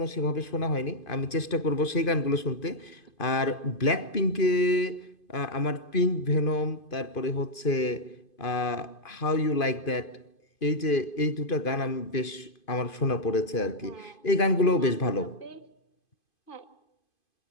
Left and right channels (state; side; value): late; right; 2.5 ms